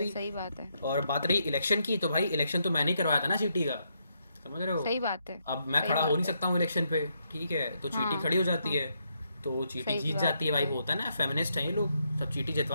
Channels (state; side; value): inverted; both; correlation -0.78